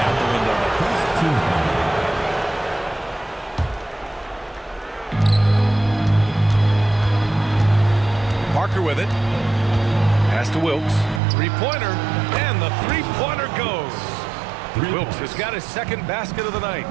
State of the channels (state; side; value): drops out; left; at 11.2 s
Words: the window there. Parker with it. Pass to Wilkes. Three-pointer, and the three-pointer goes. Wilkes has got his second basket of the night.